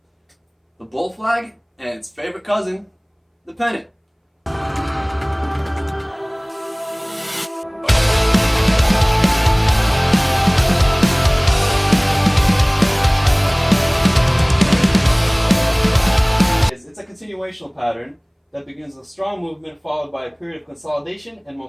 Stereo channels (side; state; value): both; identical; correlation 1.00